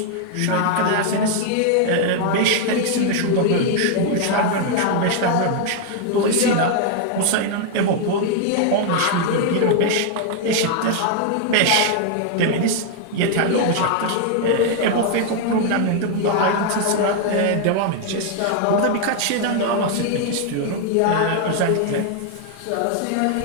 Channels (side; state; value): both; different; correlation 0.00